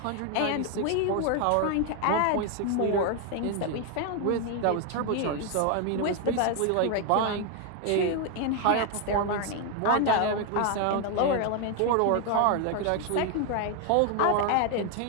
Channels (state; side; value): different; both; correlation 0.01